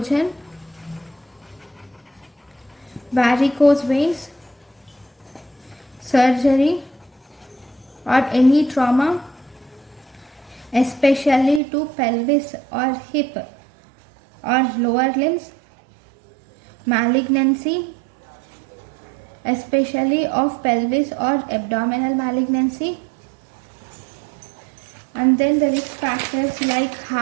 varicose veins, surgery, or any trauma, especially to pelvis or hip or lower limbs, malignancy, especially of pelvis or abdominal malignancy. And then the risk factors like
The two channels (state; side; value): drops out; left; at 11.6 s